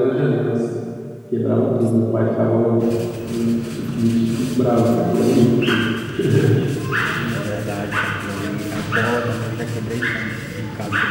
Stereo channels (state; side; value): identical; both; correlation 1.00